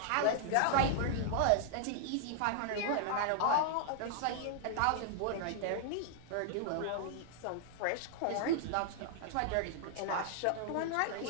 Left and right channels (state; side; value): different; both; correlation -0.01